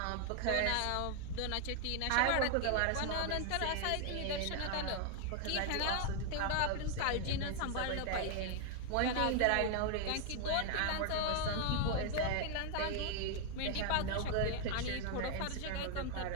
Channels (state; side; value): different; both; correlation 0.00